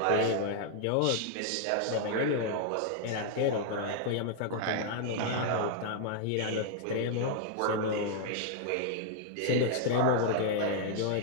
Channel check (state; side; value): different; both; correlation 0.00